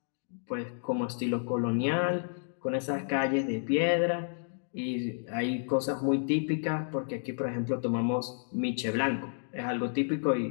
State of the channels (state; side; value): silent; right; digital silence